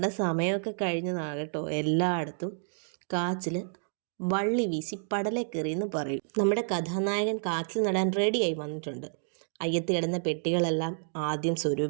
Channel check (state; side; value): silent; left; digital silence